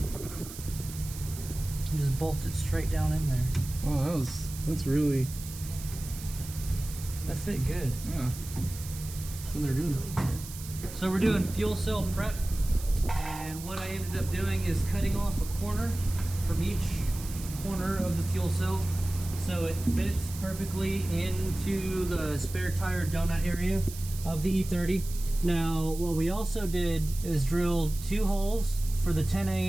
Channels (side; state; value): right; noise; hiss, 13 dB below the sound